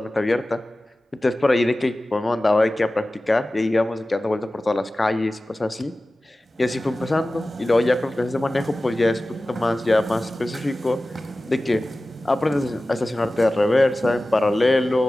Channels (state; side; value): normal; both; correlation 0.96